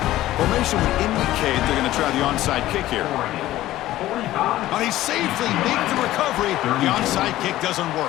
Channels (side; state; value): right; quieter; 15.1 dB